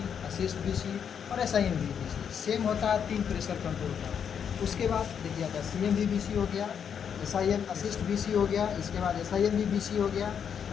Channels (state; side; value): quieter; right; 7.7 dB